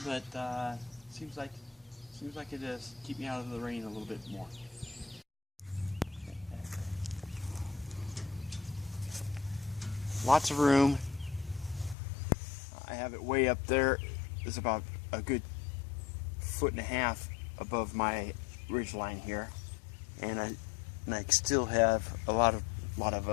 but seems like it does keep me out of the rain a little bit more. Lots of room. I have it way up there. It's about a good 1.5 feet above my ridge line here, and I still have a lot of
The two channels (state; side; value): drops out; right; at 12.0 s